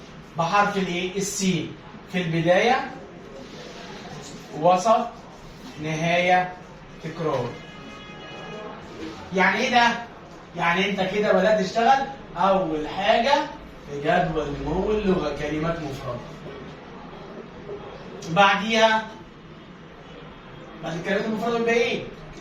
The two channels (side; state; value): both; identical; correlation 1.00